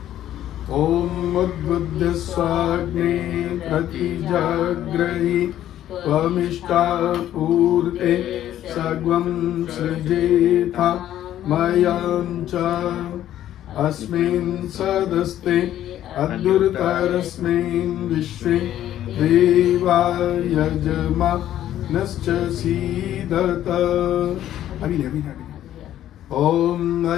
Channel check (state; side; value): quieter; right; 12.1 dB